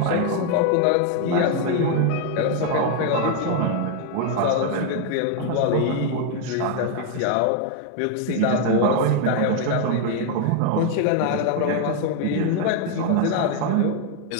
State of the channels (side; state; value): both; different; correlation 0.00